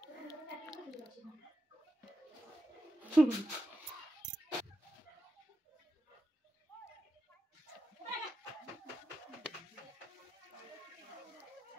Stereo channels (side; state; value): both; normal; correlation 0.89